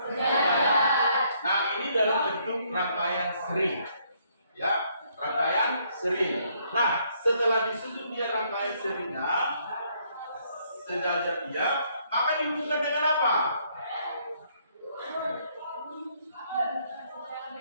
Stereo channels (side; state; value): both; inverted; correlation -0.69